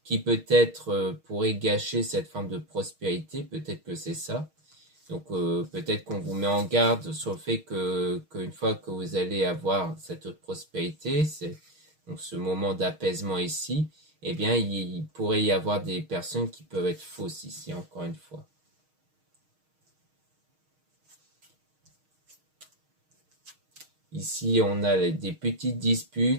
qui peut-être pourrait gâcher cette forme de prospérité, peut-être que c'est ça. Donc peut-être qu'on vous met en garde sur le fait qu'une fois que vous allez avoir cette prospérité, c'est donc ce moment d'apaisement ici, eh bien il pourrait y avoir des personnes qui peuvent être fausses ici, encore une fois. Ici, on a des petites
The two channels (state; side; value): late; left; 6.4 ms